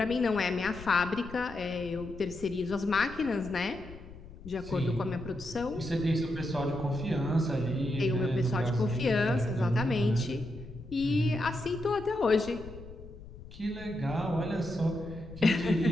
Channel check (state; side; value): noise; left; rumble, 15 dB below the sound